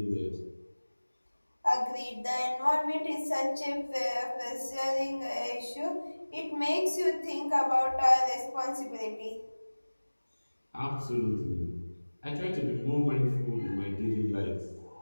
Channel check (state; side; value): inverted; both; correlation -1.00